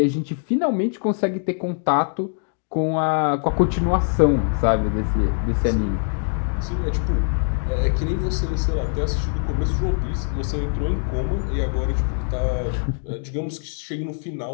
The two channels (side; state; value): right; silent; 56 dB below the other